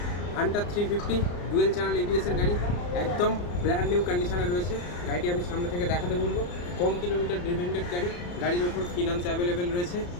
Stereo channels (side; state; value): right; late; 34 ms